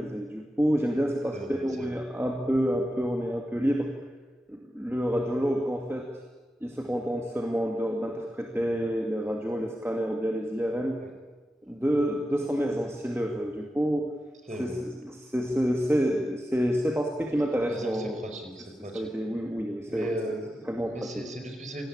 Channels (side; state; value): both; normal; correlation 0.90